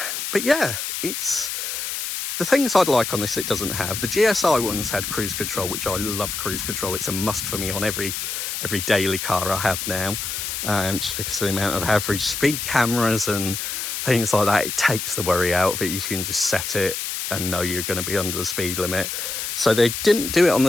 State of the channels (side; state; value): left; noise; hiss, 4 dB below the sound